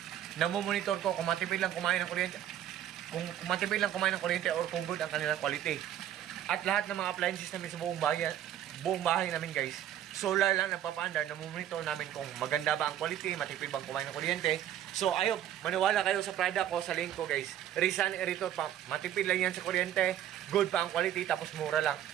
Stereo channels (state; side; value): quieter; left; 11.2 dB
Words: namumonitor ko kung matipid lang kumain ng kuryente, kung matipid lang kumain ng kuryente or kung good ang kanilang quality. At lahat ng mga appliances namin sa buong bahay namin guys, solar lang nagpapaandar, namumonitor namin kung maganda ba ang quality, matipid bang kumain ng kuryente. So ayun, maniwala kayo sa product ko, sa link ko guys. Rizan aerator pump, matipid lang yan sa kuryente, good pa ang quality, tapos mura lang.